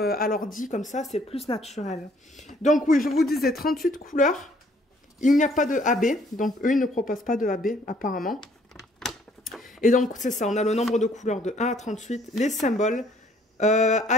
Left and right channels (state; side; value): normal; both; correlation 0.62